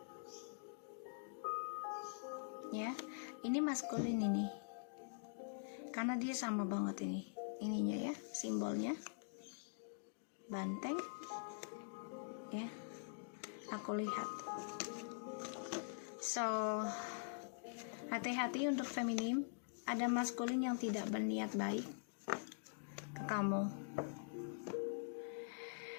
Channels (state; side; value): silent; right; digital silence